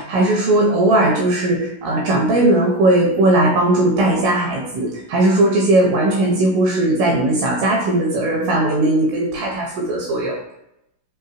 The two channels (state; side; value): late; left; 16 ms